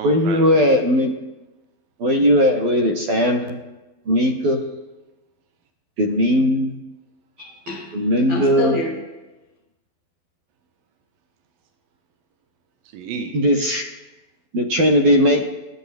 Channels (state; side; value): late; left; 12 ms